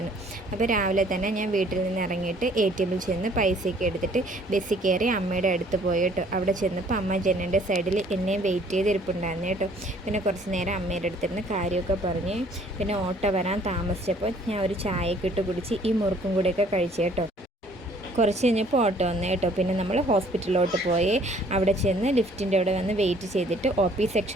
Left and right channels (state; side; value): normal; both; correlation 0.58